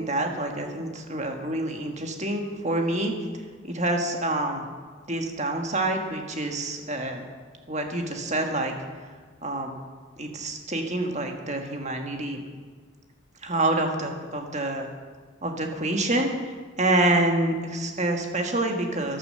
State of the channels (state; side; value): normal; both; correlation 0.21